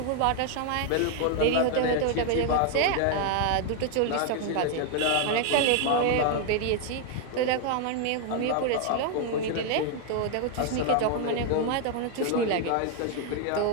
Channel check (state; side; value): different; both; correlation 0.01